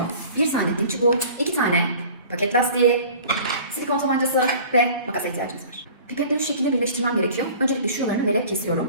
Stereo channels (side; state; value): both; inverted; correlation -0.44